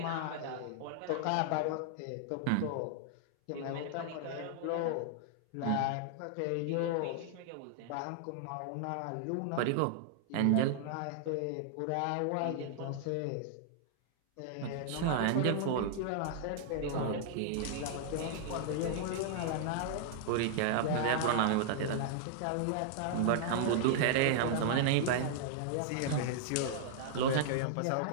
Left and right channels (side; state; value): both; different; correlation -0.01